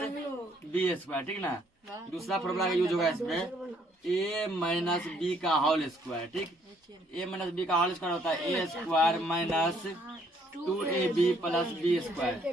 b square, ठीक है ना। दूसरा फॉर्मूला का यूज होगा इसमें a माइनस बी का होल स्क्वायर, ठीक। a माइनस बी का होल स्क्वायर होता है a square minus 2ab plus b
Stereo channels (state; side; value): normal; both; correlation 0.66